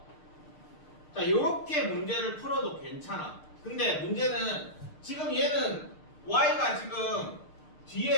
자, 요렇게 문제를 풀어도 괜찮아. 근데 문제는 지금 얘는 y가 지금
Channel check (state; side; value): late; right; 6.6 ms